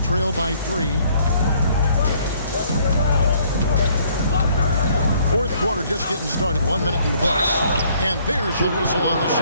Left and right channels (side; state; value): both; inverted; correlation -0.63